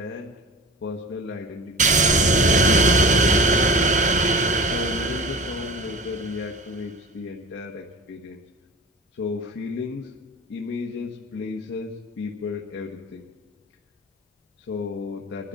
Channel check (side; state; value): both; normal; correlation 0.35